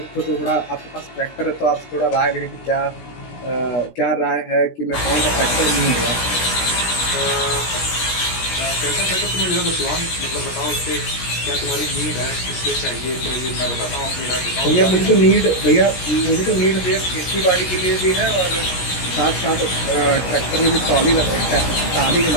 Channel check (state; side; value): late; right; 17 ms